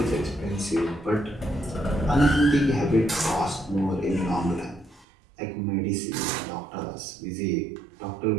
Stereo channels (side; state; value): left; drops out; at 5.1 s